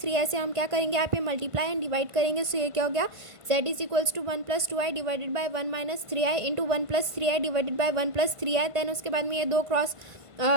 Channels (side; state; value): left; late; 1.5 ms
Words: से हम क्या करेंगे, यहाँ पे मल्टीप्लाई एंड डिवाइड करेंगे। सो ये क्या हो गया, z is equals to 1 + 2i divided by 1 - 3i into 1 + 3i divided by 1 + 3i। Then उसके बाद में ये